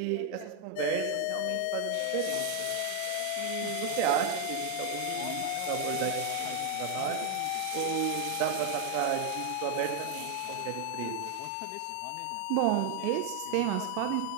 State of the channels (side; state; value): both; different; correlation 0.01